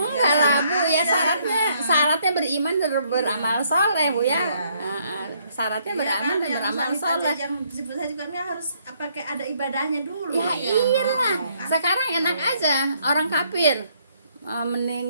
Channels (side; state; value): both; inverted; correlation -0.69